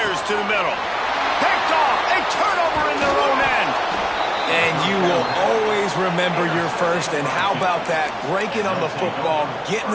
to the middle. Picked off. A turnover in their own end. And you will always remember your first. And how about that? Breaking on the football, getting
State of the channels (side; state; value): both; identical; correlation 1.00